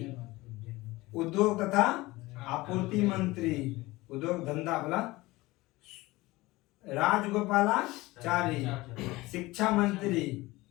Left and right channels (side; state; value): right; quieter; 20.1 dB